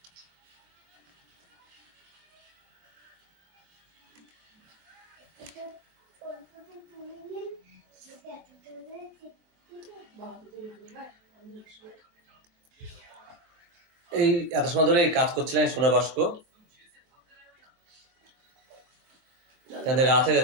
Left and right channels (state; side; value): late; left; 23 ms